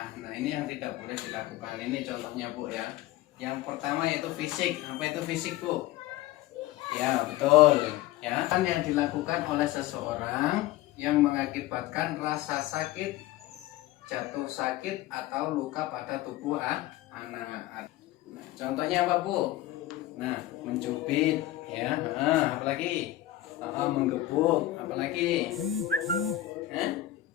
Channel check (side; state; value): right; quieter; 15.3 dB